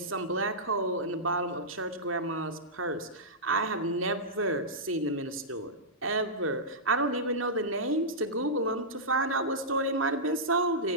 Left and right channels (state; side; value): normal; both; correlation -0.13